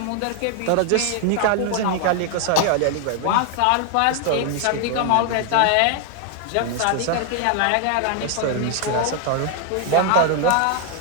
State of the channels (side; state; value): both; different; correlation 0.00